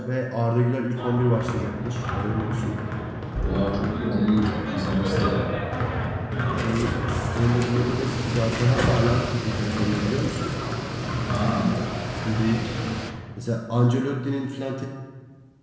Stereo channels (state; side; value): identical; both; correlation 1.00